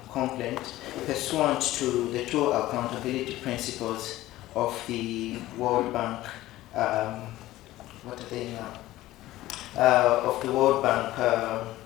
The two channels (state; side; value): quieter; right; 16.2 dB